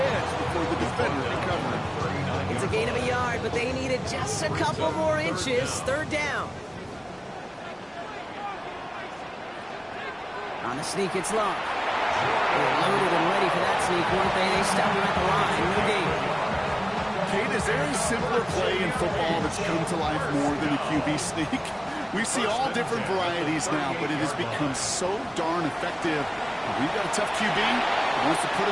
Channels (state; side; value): identical; both; correlation 1.00